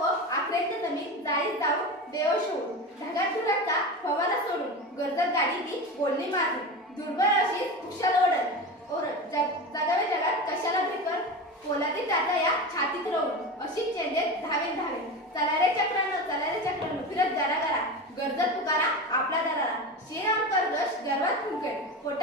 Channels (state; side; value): normal; both; correlation 0.25